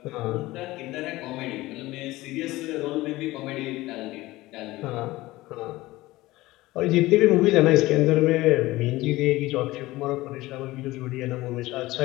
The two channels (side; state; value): right; quieter; 18.5 dB